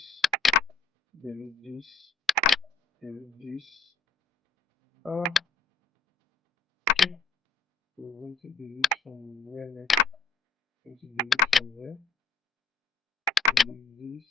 delete this, delete this. Okay. So we're going to delete from where next? Going to delete from there. Delete this,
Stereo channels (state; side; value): quieter; right; 4.3 dB